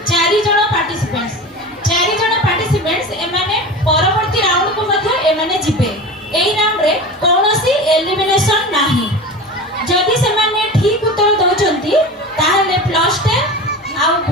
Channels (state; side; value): normal; both; correlation 0.31